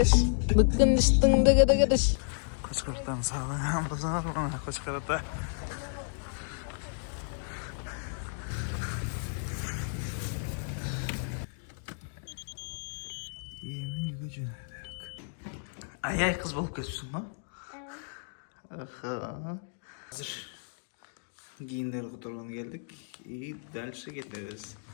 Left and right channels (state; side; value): silent; right; digital silence